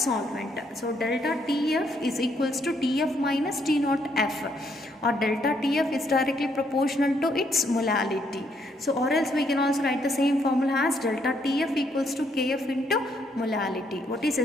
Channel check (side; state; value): both; normal; correlation 0.72